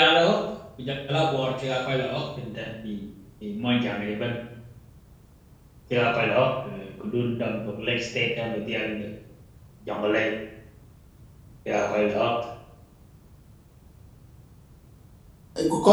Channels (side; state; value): both; identical; correlation 1.00